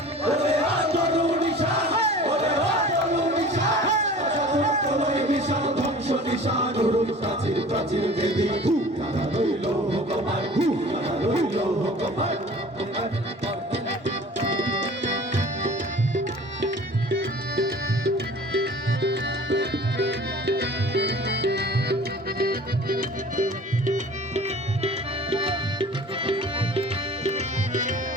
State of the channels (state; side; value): normal; both; correlation 0.44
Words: ওরে আতরু নিশান ওরে আতরু নিশান তোলই বিশাল ধ্বংস নিশান উরুম প্রাচীর প্রাচীর বেদি তারা রইল হুকমান তারা রইল হুকমান